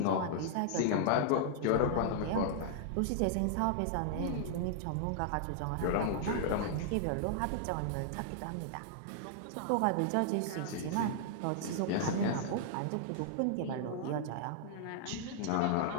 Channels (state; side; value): different; both; correlation -0.01